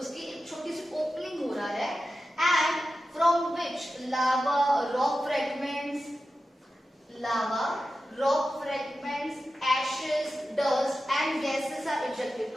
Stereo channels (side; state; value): both; normal; correlation 0.92